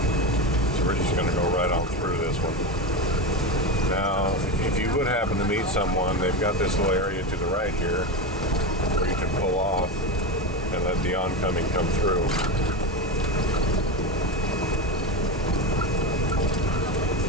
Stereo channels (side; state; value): both; normal; correlation 0.18